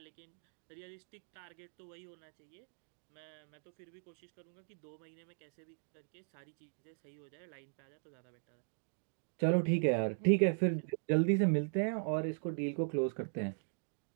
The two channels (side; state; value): left; silent; digital silence